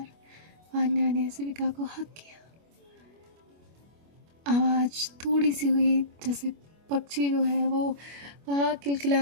वान्या ने शिविका को हक किया। आवाज़ थोड़ी सी हुई, जैसे पक्षी जो है वो वहाँ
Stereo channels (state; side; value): late; left; 25 ms